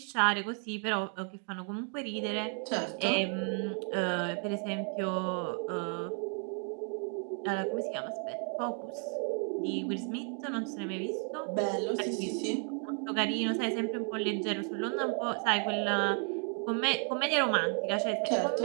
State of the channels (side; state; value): left; quieter; 36.9 dB